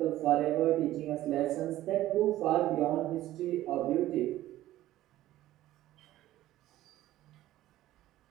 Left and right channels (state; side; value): quieter; left; 14.7 dB